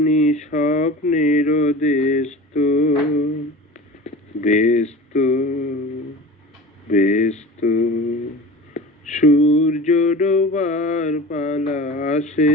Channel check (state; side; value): normal; both; correlation 0.36